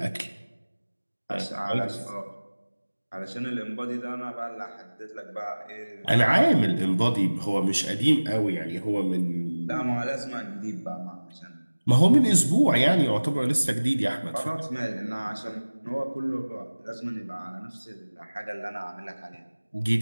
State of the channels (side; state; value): both; inverted; correlation -1.00